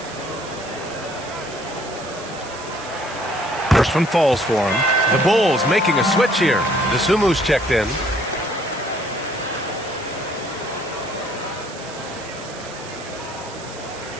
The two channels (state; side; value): noise; right; hiss, 16 dB below the sound